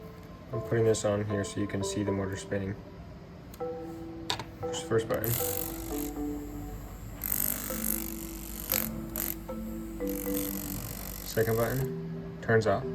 I'm putting this on here so you can see the motor spinning. Push the first button. Second button, turns off.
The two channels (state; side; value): identical; both; correlation 1.00